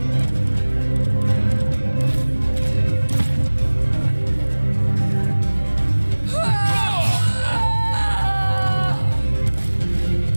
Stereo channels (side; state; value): both; inverted; correlation -1.00